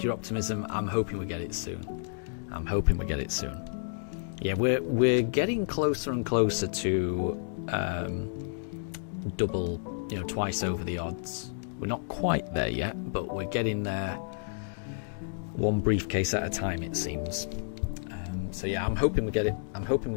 your optimism. I'm hoping we get it soon. I'm hoping we get it soon. Yeah, we're getting closer and closer to double, twice over the odds. We're not quite there yet, but we're getting there. One briefcase at a time, it seems. So yeah, I'm hoping we get it. I'm hoping we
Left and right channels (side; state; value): right; silent; digital silence